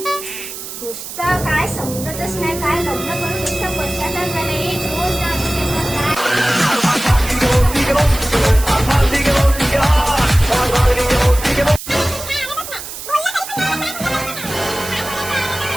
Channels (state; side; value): noise; right; hiss, 10 dB below the sound